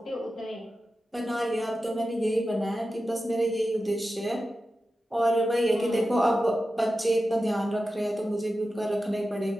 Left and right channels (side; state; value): both; normal; correlation 0.92